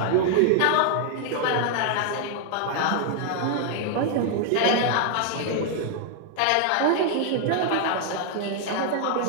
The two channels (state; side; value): different; both; correlation 0.00